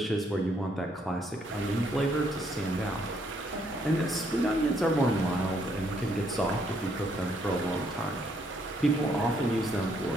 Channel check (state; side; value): normal; both; correlation 0.71